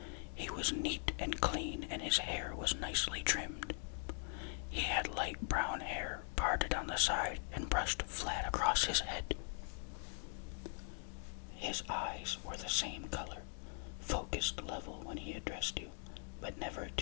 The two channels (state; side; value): silent; right; 50 dB below the other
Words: He was neat and clean, and his hair was nicely trimmed. He had light brown hair parted on the side and brushed flat across his head. His eyes were the same color, focused level when he addressed you, but never